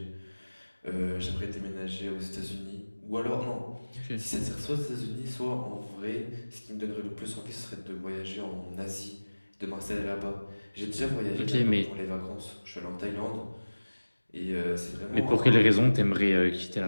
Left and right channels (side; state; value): both; inverted; correlation -1.00